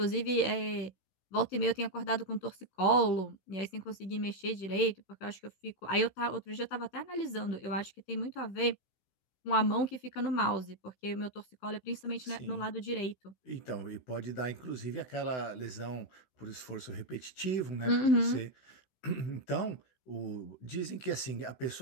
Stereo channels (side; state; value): right; late; 16 ms